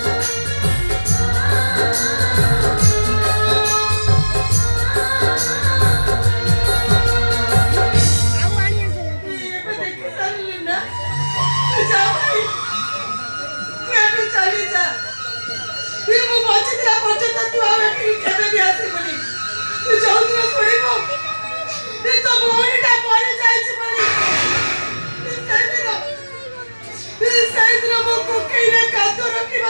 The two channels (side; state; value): both; inverted; correlation -1.00